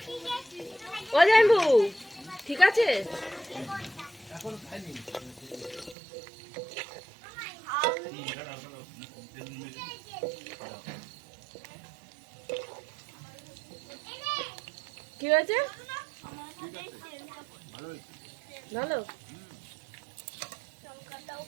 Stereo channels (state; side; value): drops out; left; at 6.0 s